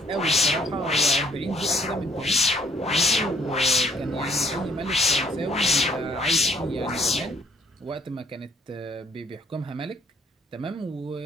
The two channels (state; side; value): normal; both; correlation 0.63